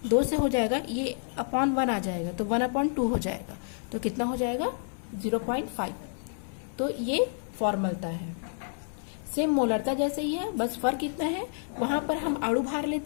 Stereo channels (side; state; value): right; silent; digital silence